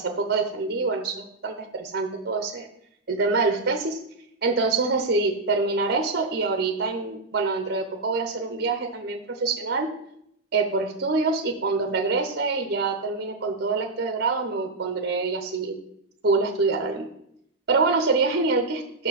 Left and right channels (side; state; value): left; quieter; 3.4 dB